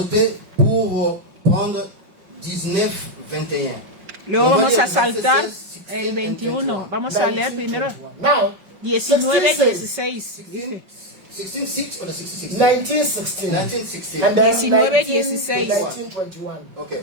pour prendre 19, 21. Luego On va vamos lire a le verset saltar 16, el 16 21. and 21. Vamos a leer primero Now, 19, 16 says, 16. 16, 6 or the 16? 19:16, 19, 16. and then 19, 19 to 16. 19:21. Okay.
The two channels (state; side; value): late; left; 5.3 ms